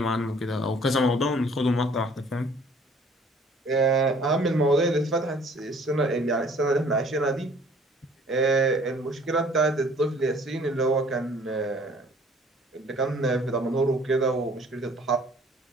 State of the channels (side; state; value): both; normal; correlation 0.55